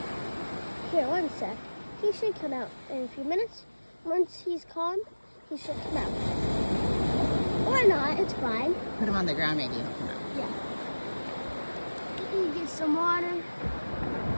Here, one sec. He should come out in a few minutes. Once he's calm, he should come out. Or not, it's fine. Put him on the ground, maybe he'll come out. Yeah. You get some water.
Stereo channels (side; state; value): both; inverted; correlation -1.00